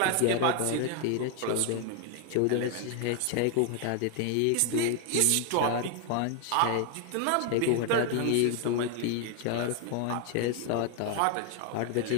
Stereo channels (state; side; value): different; both; correlation 0.00